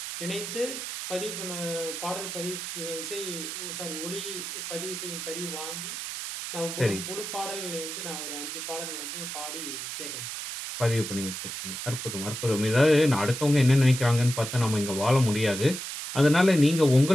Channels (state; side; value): noise; right; hiss, 6 dB below the sound